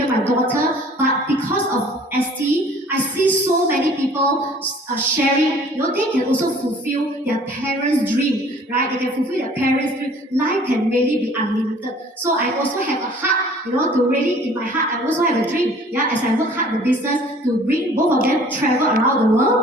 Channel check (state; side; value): normal; both; correlation 0.52